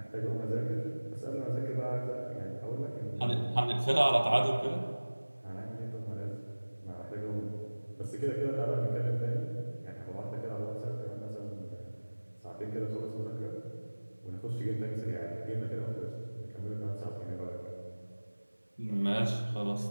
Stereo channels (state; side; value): inverted; both; correlation -1.00